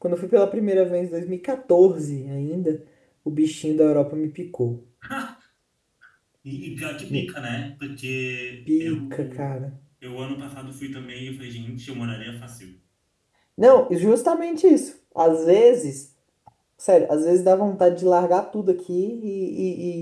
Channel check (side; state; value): both; identical; correlation 1.00